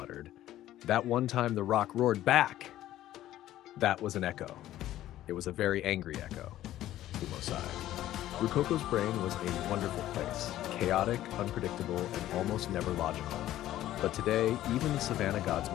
"That one time the rock roared back!" That was an echo. It was a very angry echo. Fumo sighed. Rukoko's brain was a wonderful place, chaotic, unpredictable, and almost never logical. But today, even the Savanna gods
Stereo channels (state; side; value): quieter; right; 13.7 dB